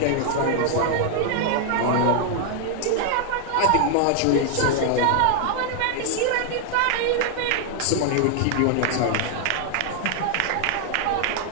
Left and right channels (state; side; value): different; both; correlation 0.00